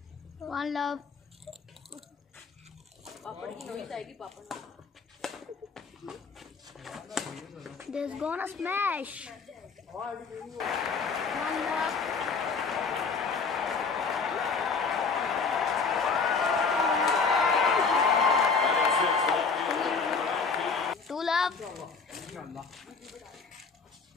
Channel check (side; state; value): right; quieter; 4.9 dB